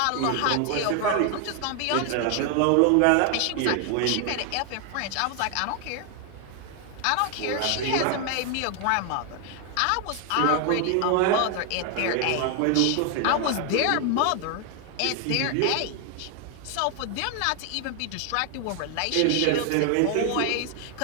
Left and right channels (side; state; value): both; different; correlation 0.00